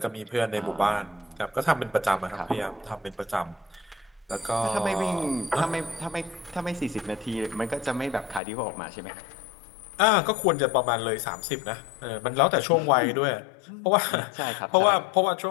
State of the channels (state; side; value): drops out; right; at 8.4 s